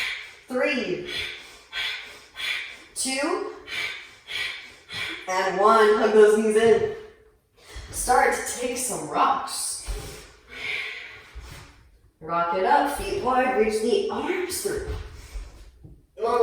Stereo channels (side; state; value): both; identical; correlation 1.00